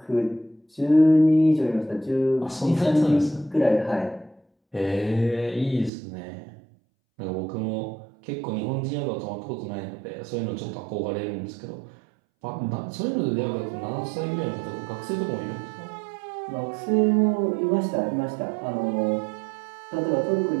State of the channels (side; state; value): left; drops out; at 5.9 s